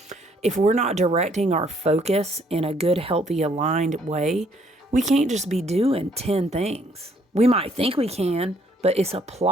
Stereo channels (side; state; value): both; normal; correlation 0.66